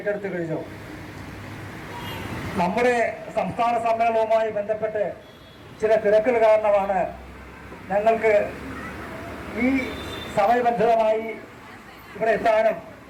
കഴിഞ്ഞു. നമ്മുടെ സംസ്ഥാന സമ്മേളനവുമായി ബന്ധപ്പെട്ട് ചില തിരക്കുകൾ കാരണമാണ് ഞങ്ങൾക്ക് ഈ സമയബന്ധിതമായി ഇവിടെ എത്താനും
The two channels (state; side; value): identical; both; correlation 1.00